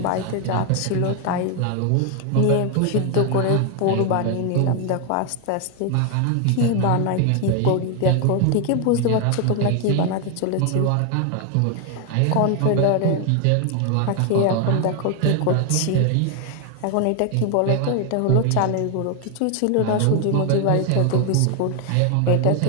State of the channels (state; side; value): different; both; correlation 0.01